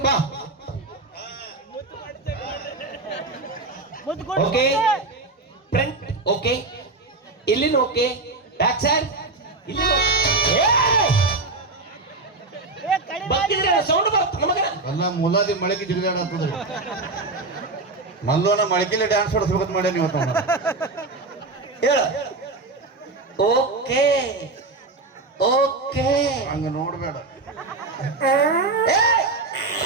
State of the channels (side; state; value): left; quieter; 3.4 dB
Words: ಬಾ ಓಕೆ ಫ್ರಂಟ್ ಓಕೆ ಇಲ್ಲಿನ ಓಕೆ ಬ್ಯಾಕ್ ಸೈಡ್ ಇಲ್ಲಿ ಸೌಂಡ್ ಬರುತ್ತೆ ನಮಗ ಅಲ್ಲ ಮುಲಾದಿ ಮಳೆಗೆ ಜಿಗಿದಾಡತ್ತದ್ರಿ ಮಲ್ಲೋನ ಮಳಕಿಲೆ ಡ್ಯಾನ್ಸ್ ಹೊಡಿಸ್ಬೇಕಂತ ಮಾಡ್ಯಾನ ಇವತ್ತು ಹೇಳು ಓಕೆ ಓಕೆ ಹಂಗ ನೋಡ್ಬೇಡ